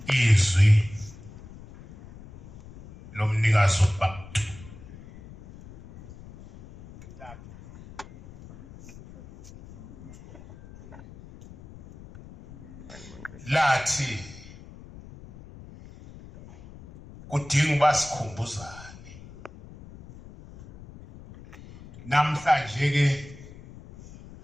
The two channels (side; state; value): left; noise; rumble, 18 dB below the sound